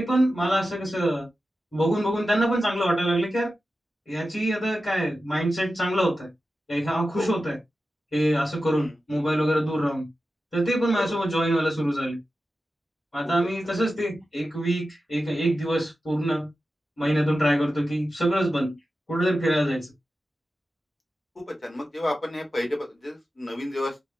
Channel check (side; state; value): both; normal; correlation 0.92